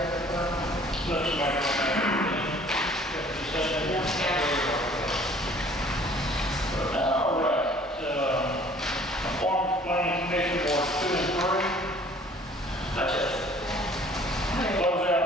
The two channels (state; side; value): normal; both; correlation 0.54